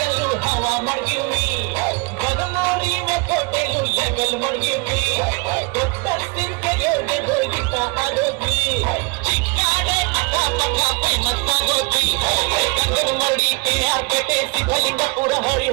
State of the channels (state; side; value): quieter; left; 30.2 dB